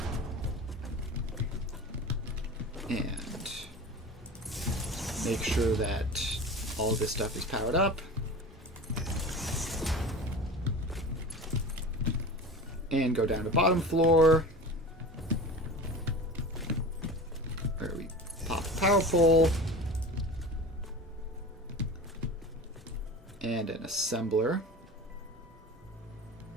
And make sure that all this stuff is powered up. And go down to bottom floor, where we pop a power pole and an assembler.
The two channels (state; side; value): normal; both; correlation 0.34